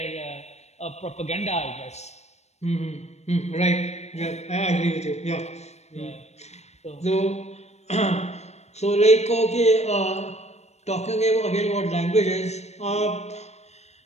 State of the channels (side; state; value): right; late; 0.32 ms